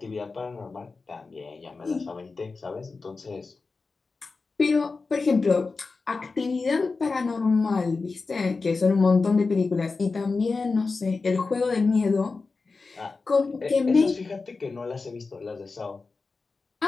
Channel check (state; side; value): quieter; right; 4.1 dB